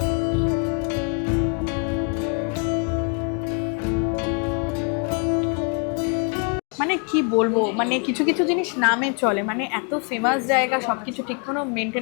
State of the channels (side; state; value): right; quieter; 38.7 dB